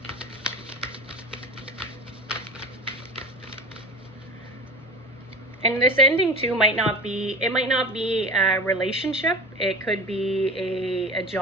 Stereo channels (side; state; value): both; normal; correlation 0.33